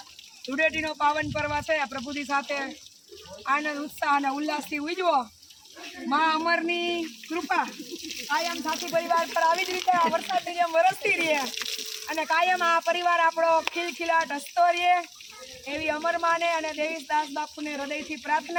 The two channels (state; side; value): identical; both; correlation 1.00